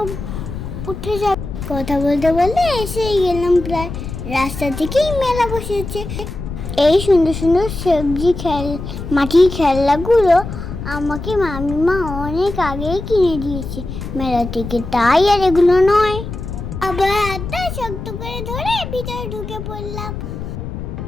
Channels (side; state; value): left; noise; rumble, 8 dB below the sound